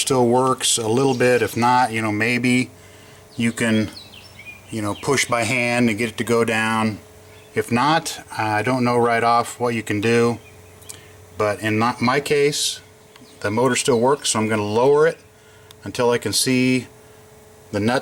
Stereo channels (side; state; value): both; identical; correlation 1.00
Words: works a little bit. If not, maybe you can push by hand and get it to go down. If not, I don't know right off what you can do, but in my case the motor still works, so I'm going to lower it until I can see the